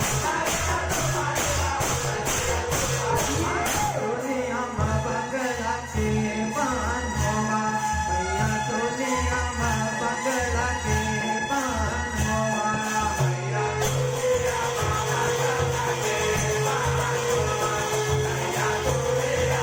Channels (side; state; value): both; identical; correlation 1.00